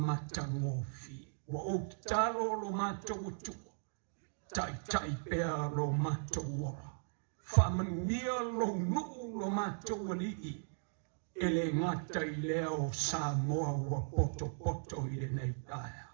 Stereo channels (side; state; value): left; silent; digital silence